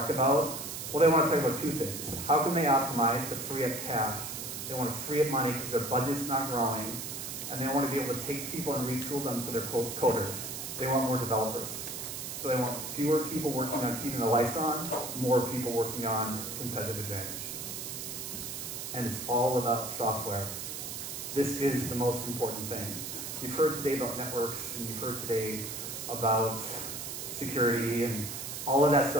about, well, they want to talk about two things. How can they optimize to free up cash? They want to free up money because their budget's not growing. And they want to be able to take people and retool them so they're coders. They want more developers. So they want fewer people working on keeping the lights on, more people working on competitive advantage. And it's all about software. This is the most important thing. You've heard today about networks, and you've heard today about security, and all of that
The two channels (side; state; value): right; noise; hiss, 6 dB below the sound